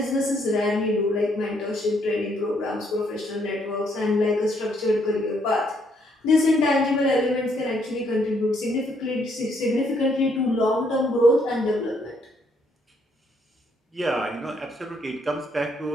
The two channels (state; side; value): normal; both; correlation 0.71